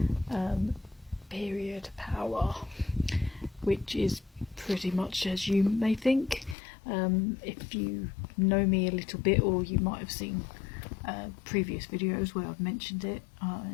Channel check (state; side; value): drops out; right; at 6.6 s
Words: Period Power, which is pretty much as you may think. If you know me a little bit, or you might have seen previous videos where I've mentioned it,